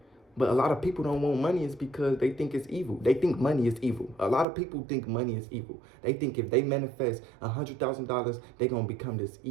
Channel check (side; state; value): left; drops out; at 4.5 s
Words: But a lot of people don't want money is because they think it's evil. They think money is evil. A lot of people think money is evil. They think if they manifest $100,000, they're going to become this